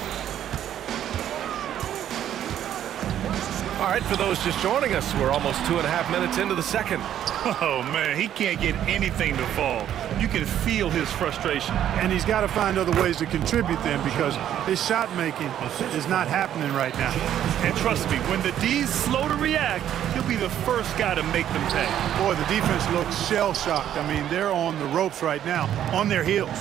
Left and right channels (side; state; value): left; quieter; 10.8 dB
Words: All right, for those just joining us, we're almost 2.5 minutes into the second. Oh, man, he can't get anything to fall. You can feel his frustration. And he's got to find other ways to contribute then, because his shot making is not happening right now. And trust me, when the D's slow to react, he'll be the first guy to make them pay. Boy, the defense looks shell-shocked. I mean, they're on the ropes right now, on their heels.